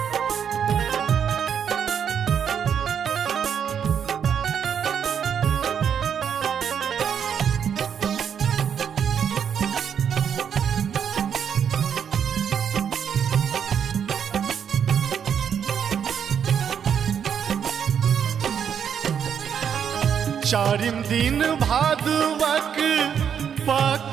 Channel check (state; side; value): quieter; left; 8.0 dB